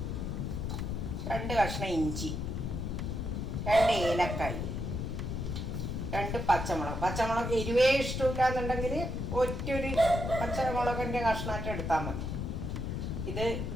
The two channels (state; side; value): noise; left; rumble, 3 dB below the sound